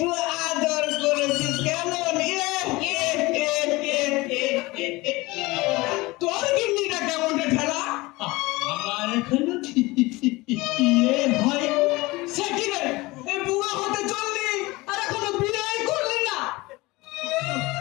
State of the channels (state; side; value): quieter; right; 21.8 dB